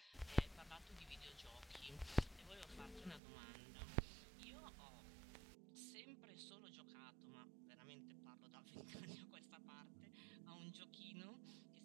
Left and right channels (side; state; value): left; drops out; at 3.2 s